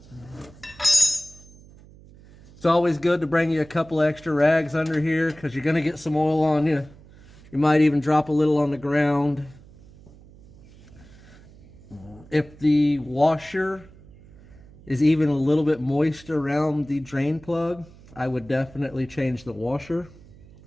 It's always good to bring you a couple extra rags under here because you're going to get some oil on you. You might even drop a little on the ground. If the washer is even a little bit moist around the drain plug, I would definitely change the washer.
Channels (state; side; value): noise; right; hum, 23 dB below the sound